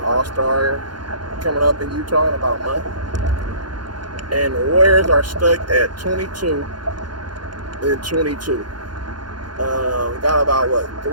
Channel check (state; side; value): late; left; 0.71 ms